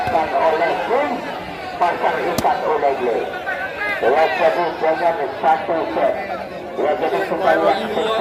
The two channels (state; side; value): identical; both; correlation 1.00